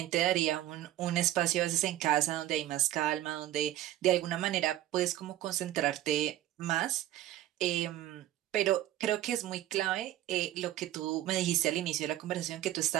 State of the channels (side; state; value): left; quieter; 13.6 dB